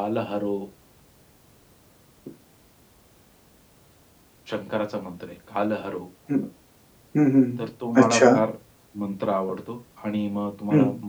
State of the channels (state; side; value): identical; both; correlation 1.00